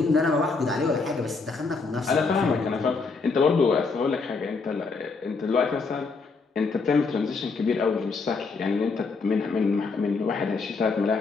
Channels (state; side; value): quieter; right; 4.3 dB